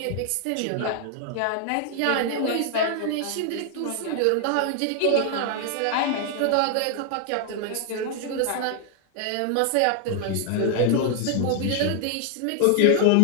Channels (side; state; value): both; different; correlation 0.00